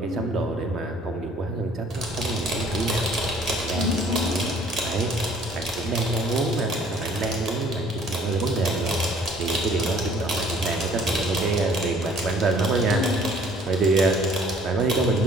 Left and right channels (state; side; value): normal; both; correlation 0.56